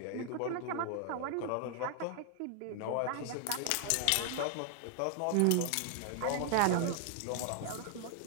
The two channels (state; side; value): different; both; correlation 0.00